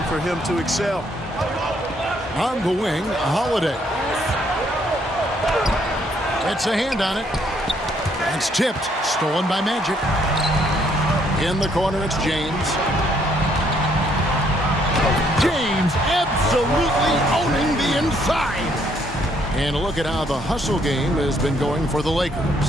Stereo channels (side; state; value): both; normal; correlation 0.68